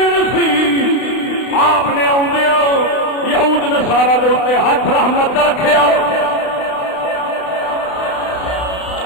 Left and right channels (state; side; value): late; right; 32 ms